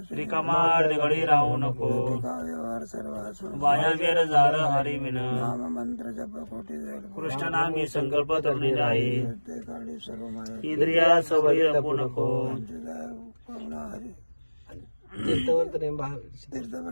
रिकामा गडी राहू नको वायावेर जार हरी विन मंत्र जप कोटी कृष्ण नामी संकल्प तरुणी आहे इंद्रिया सवयी रपू नको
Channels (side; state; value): both; inverted; correlation -1.00